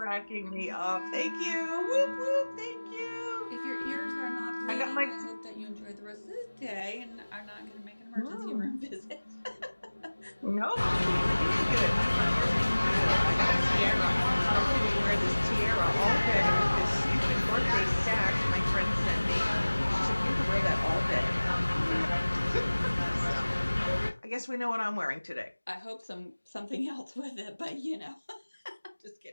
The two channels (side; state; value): both; inverted; correlation -1.00